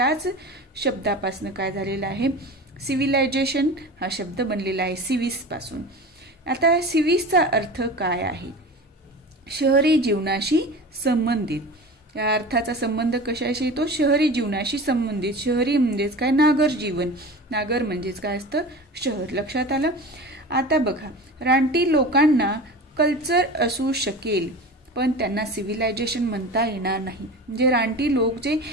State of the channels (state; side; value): normal; both; correlation 0.33